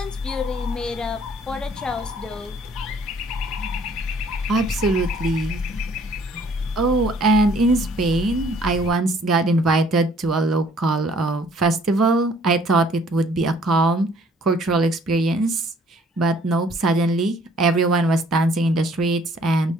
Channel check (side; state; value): both; normal; correlation 0.59